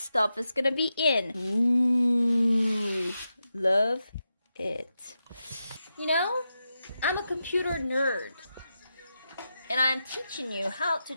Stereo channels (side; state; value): both; inverted; correlation -0.88